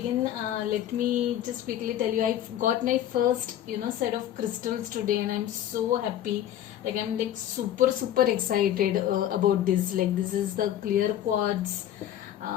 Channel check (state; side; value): quieter; right; 11.5 dB